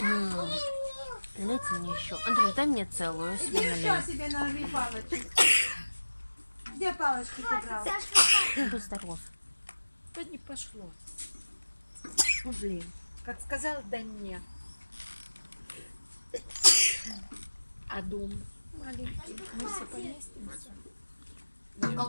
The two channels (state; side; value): inverted; both; correlation -1.00